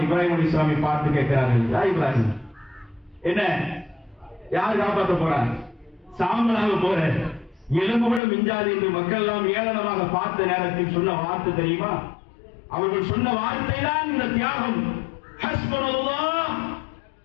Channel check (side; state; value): right; drops out; at 8.2 s